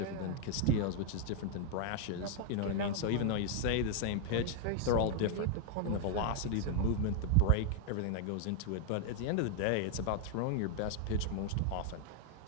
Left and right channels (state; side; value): different; both; correlation 0.00